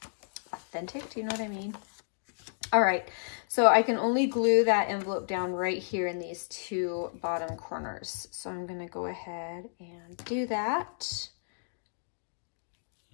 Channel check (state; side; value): silent; right; digital silence